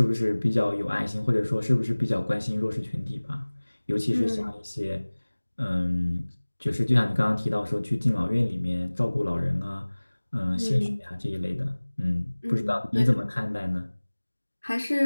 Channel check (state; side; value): inverted; both; correlation -1.00